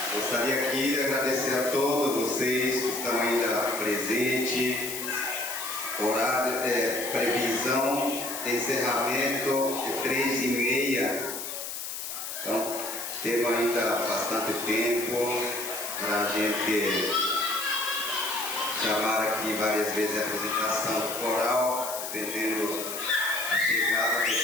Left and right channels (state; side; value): noise; left; hiss, 6 dB below the sound